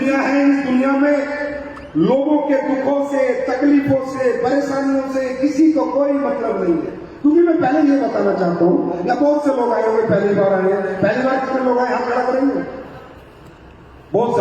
है। इस दुनिया में लोगों के दुखों से, तकलीफों से, परेशानियों से किसी को कोई मतलब नहीं है। क्योंकि मैं पहले ये बताना चाहता हूं, या बहुत से लोग आए होंगे, पहली बार आए हैं, पहली बार कितने लोग आए, हाथ खड़ा करेंगे? बहुत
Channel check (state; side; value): identical; both; correlation 1.00